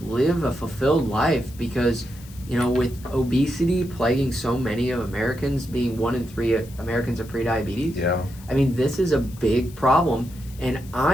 live a fulfilled life because, with obesity plaguing so many of Americans, being 1 in 3 Americans are prediabetes. Yeah. I mean, this is a big problem, and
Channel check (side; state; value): left; noise; hiss, 21 dB below the sound